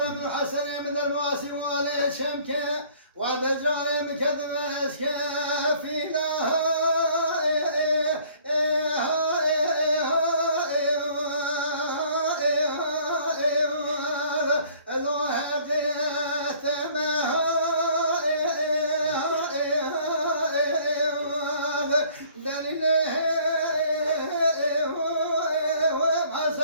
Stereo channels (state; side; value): inverted; both; correlation -0.55